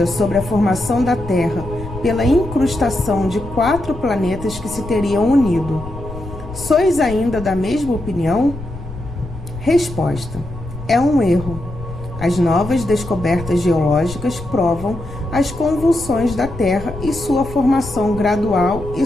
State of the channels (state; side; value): noise; left; rumble, 12 dB below the sound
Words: sobre a formação da Terra pela incrustação de 4 planetas que se teriam unido, sois ainda da mesma opinião? Resposta: é um erro. As novas descobertas geológicas provam as convulsões da Terra e sua formação gradual e